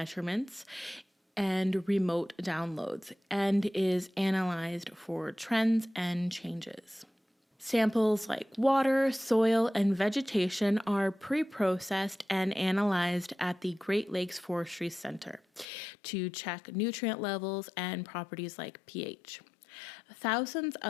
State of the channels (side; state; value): right; drops out; at 15.7 s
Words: and remote downloads and is analyzed for trends and changes. Samples like water, soil, and vegetation are pre-processed and analyzed at the Great Lakes Forestry Centre to check nutrient levels and properties like pH. Thousands